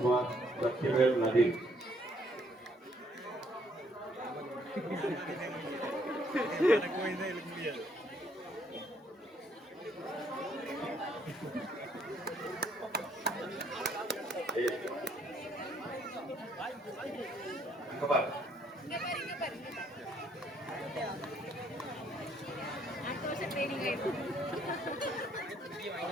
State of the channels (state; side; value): normal; both; correlation 0.67